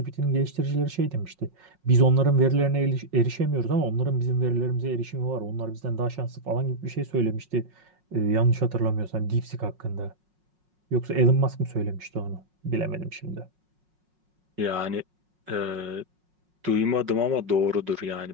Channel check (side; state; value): left; late; 5.5 ms